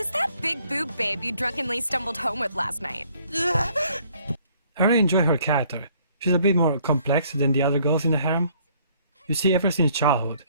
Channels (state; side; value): inverted; both; correlation -0.62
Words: that big boob babe you drunkenly stumbled home with last night? I really enjoy her character. She's a bit more complex than the other girls in the harem. You see, ever since childhood,